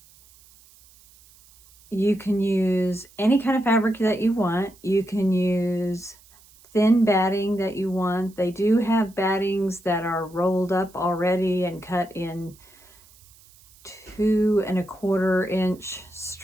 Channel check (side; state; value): right; noise; hiss, 27 dB below the sound